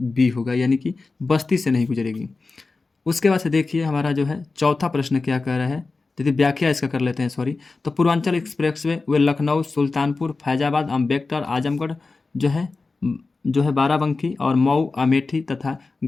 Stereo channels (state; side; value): quieter; right; 3.8 dB